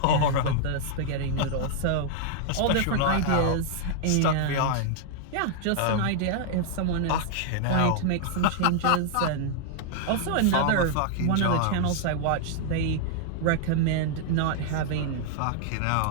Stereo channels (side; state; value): both; different; correlation -0.01